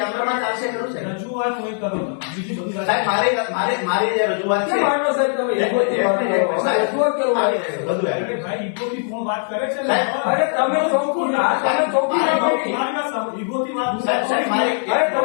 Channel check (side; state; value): right; silent; 59 dB below the other